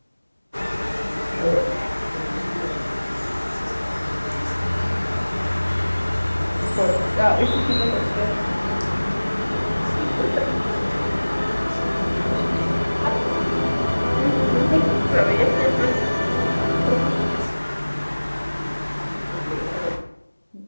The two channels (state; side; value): inverted; both; correlation -1.00